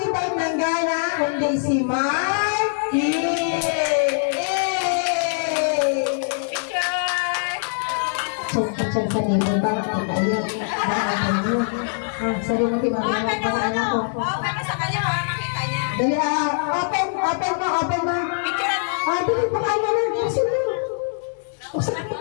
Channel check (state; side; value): silent; right; digital silence